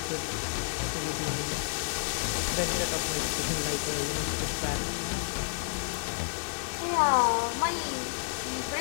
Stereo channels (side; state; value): right; silent; 58 dB below the other